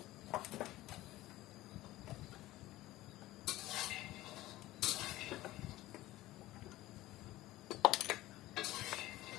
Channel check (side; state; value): right; quieter; 16.9 dB